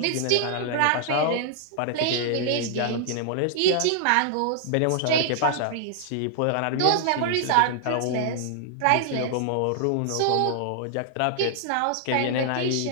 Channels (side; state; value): both; different; correlation 0.00